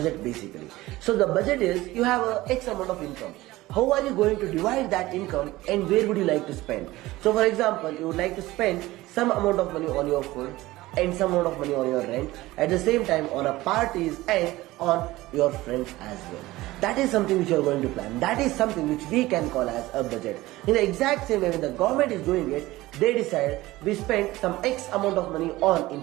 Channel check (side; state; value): left; quieter; 18.2 dB